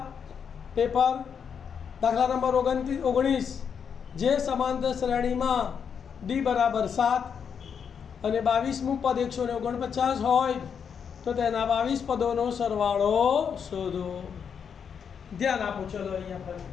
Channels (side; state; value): right; quieter; 7.1 dB